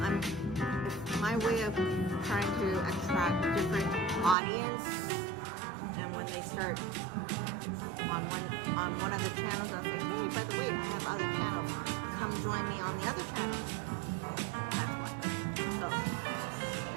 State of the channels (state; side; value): drops out; left; at 4.4 s